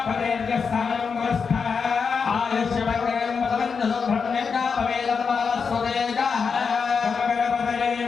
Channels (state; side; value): quieter; right; 5.6 dB